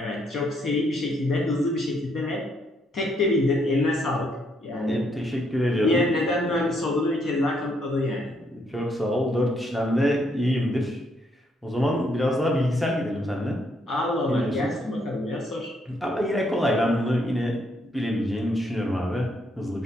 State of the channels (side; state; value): both; normal; correlation 0.73